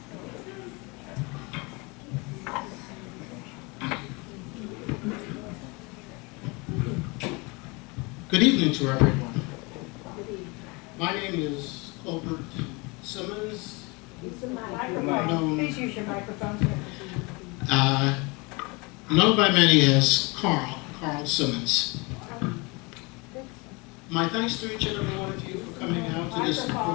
Good evening to everyone. My name is Colbert Simmons, known, Please use your microphone. known by many as Carl Simmons. My thanks to each and every one of you for coming out to this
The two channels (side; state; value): right; quieter; 27.5 dB